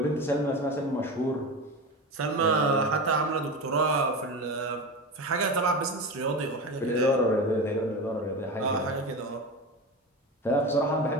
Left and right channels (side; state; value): both; normal; correlation 0.25